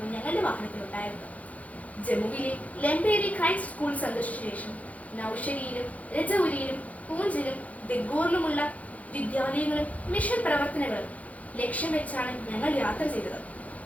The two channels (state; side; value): late; right; 0.069 ms